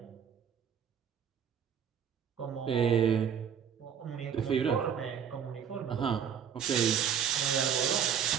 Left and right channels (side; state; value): left; quieter; 8.1 dB